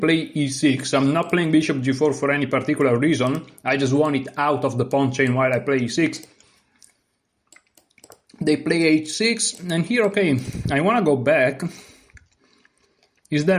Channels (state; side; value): identical; both; correlation 1.00